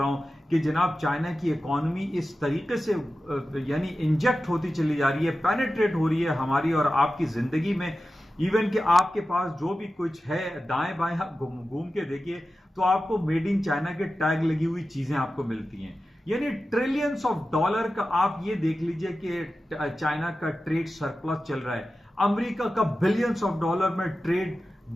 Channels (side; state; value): both; normal; correlation 0.93